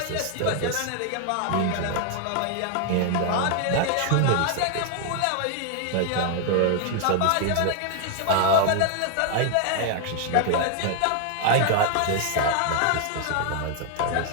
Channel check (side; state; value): both; different; correlation 0.00